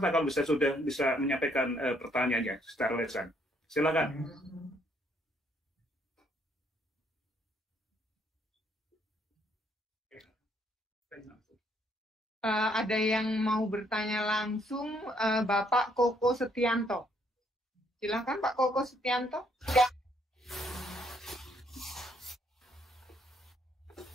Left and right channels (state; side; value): normal; both; correlation 0.69